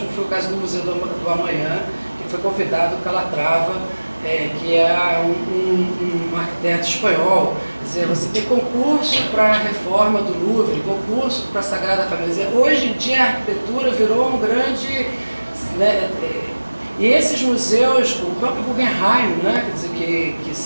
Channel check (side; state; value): both; inverted; correlation -1.00